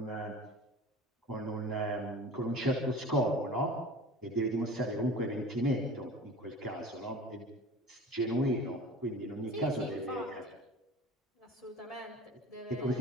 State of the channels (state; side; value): normal; both; correlation 0.39